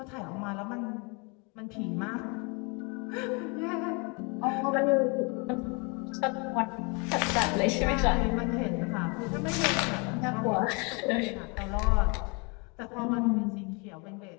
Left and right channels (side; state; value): right; quieter; 31.7 dB